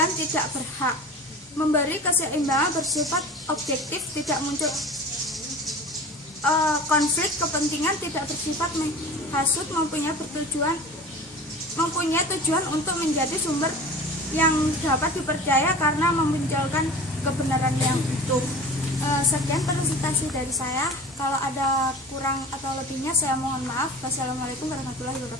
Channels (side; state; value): both; normal; correlation 0.38